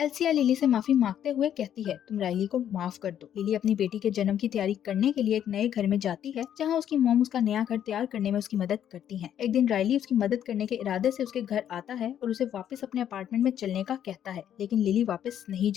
लिली से माफी मांगते हुए कहती है, तुम राइली को माफ कर दो। लिली अपनी बेटी के जन्म की तैयारी करने के लिए एक नए घर में जाती है, जहाँ उसकी मॉम उसका नया घर तैयार करने में उसकी मदद करती है। एक दिन राइली उसकी मदद करने के इरादे से उसके घर आता है और उसे वापस अपने अपार्टमेंट में चलने का कहता है, लेकिन लिली वापस नहीं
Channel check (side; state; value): right; quieter; 10.0 dB